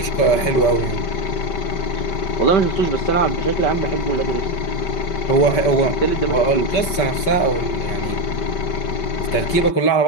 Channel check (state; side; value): late; right; 5.2 ms